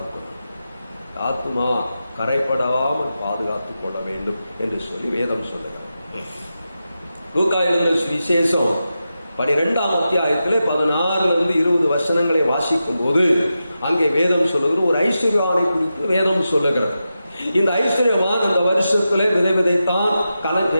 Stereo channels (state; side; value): inverted; both; correlation -0.90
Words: கொள்ள, ஆத்மா கரைப்படாமல் பாதுகாத்துக் கொள்ள வேண்டும் என்று சொல்லி வேதம் சொல்லுகிறது. லூக்கா எழுதின விசேஷம் 12ஆம் அத்தியாயத்திலே 16-20 வசனங்களை வாசிக்கும் போது அங்கே வேதம் சொல்லுகிறது, ஒரு ஐஸ்வர்யவானை குறித்து வேதம் சொல்லுகிறது. இந்த ஐஸ்வர்யவான் அந்த வருஷத்திலே விதை